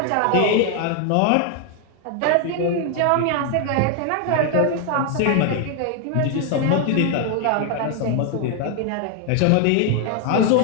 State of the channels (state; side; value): different; both; correlation 0.00